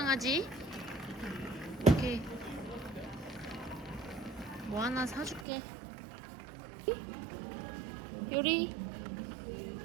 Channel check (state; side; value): drops out; left; at 5.5 s